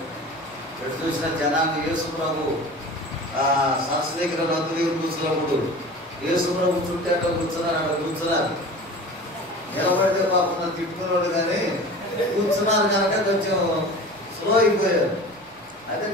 ఎటు చూసిన జనాన్ని యేసు ప్రభు సరస్సు దగ్గర నది దగ్గర కూర్చున్నప్పుడు యేసు ప్రభు చుట్టూ అట్లా కూర్చున్నారు. నిలబడితే పాపం తిట్టుకున్నాడు, కానీ కూర్చున్నారు కనుక కొంచెం స్లో అయిపోయారు. అయితే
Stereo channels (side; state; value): right; noise; rumble, 30 dB below the sound